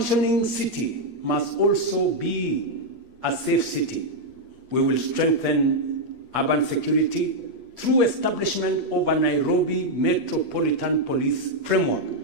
city must also be a safe city, we will strengthen urban security through establishment of a Nairobi Metropolitan Police framework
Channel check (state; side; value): late; left; 8.5 ms